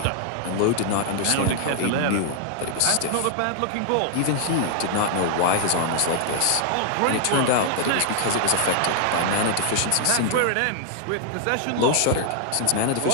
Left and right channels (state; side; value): different; both; correlation -0.01